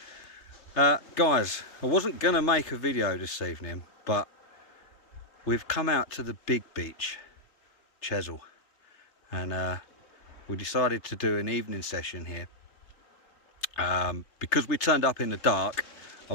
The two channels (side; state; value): right; late; 3.3 ms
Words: Guys, I wasn't gonna make a video this evening, but we've come out to the big beach, Chesil, and we decided to do an evening session here. Because we turned up in the dark, I